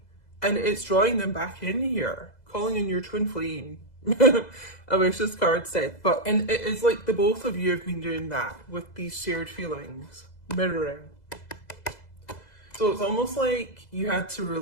and it's drawing them back in here, calling in your twin flame. I wish this card said, and it's like the both of you have been doing that with these shared feelings, mirroring. So it's almost like you had to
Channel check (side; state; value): right; late; 2.0 ms